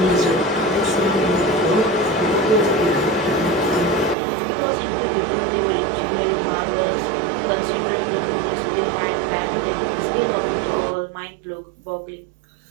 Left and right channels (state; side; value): drops out; left; at 4.2 s